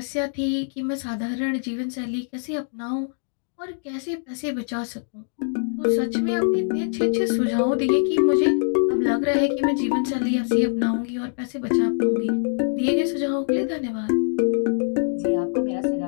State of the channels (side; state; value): right; silent; digital silence